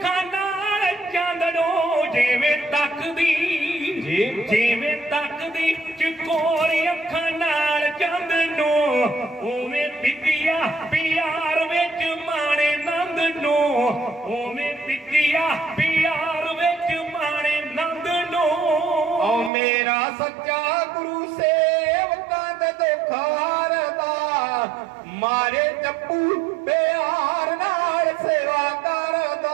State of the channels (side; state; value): left; drops out; at 19.5 s